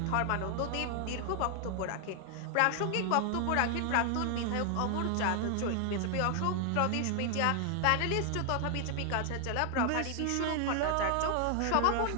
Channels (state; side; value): different; both; correlation 0.00